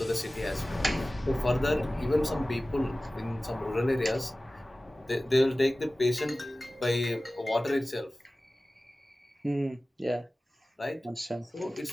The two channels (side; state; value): both; normal; correlation 0.97